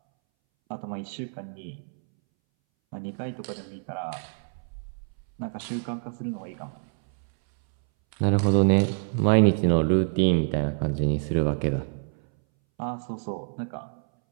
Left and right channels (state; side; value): silent; left; 60 dB below the other